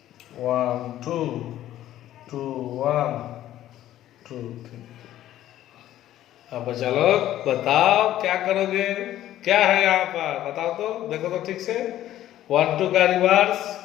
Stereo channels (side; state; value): right; quieter; 13.0 dB